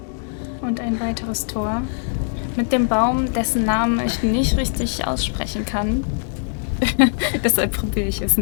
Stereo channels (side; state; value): right; silent; digital silence